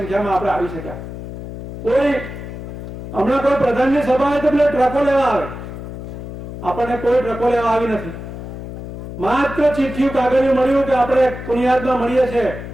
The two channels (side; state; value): left; noise; hum, 10 dB below the sound